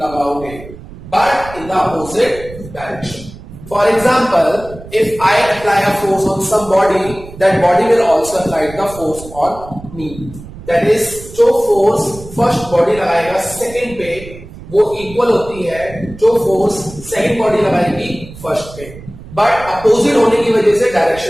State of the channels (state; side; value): noise; right; rumble, 16 dB below the sound